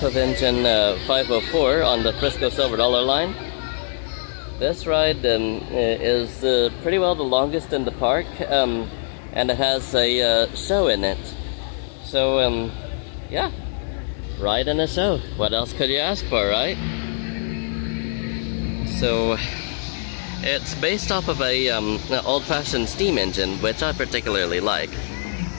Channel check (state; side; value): silent; right; digital silence